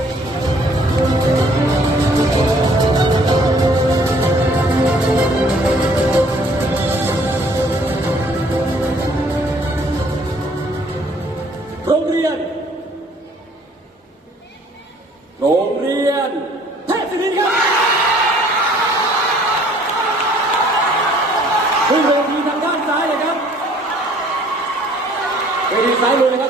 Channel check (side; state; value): both; normal; correlation 0.58